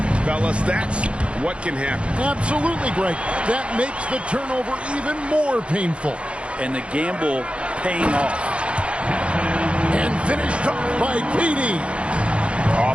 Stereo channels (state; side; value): late; left; 0.059 ms